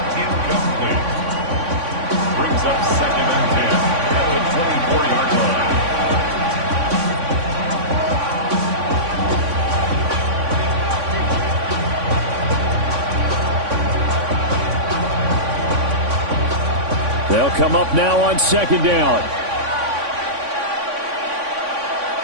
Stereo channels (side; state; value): left; late; 3.5 ms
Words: Incomplete. Brings up 2nd and 10 at the 24-yard line. They'll come up now on 2nd down.